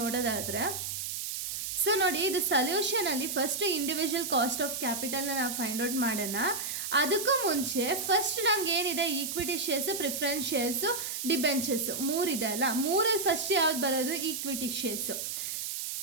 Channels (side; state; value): right; noise; hiss, 4 dB below the sound